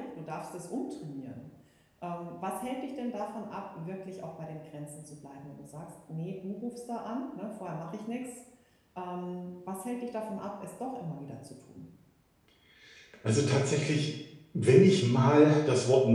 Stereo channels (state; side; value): identical; both; correlation 1.00